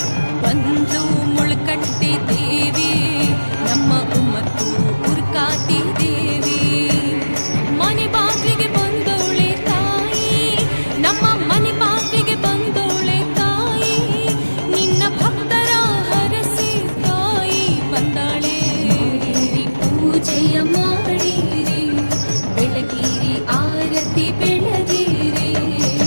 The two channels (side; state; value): both; inverted; correlation -1.00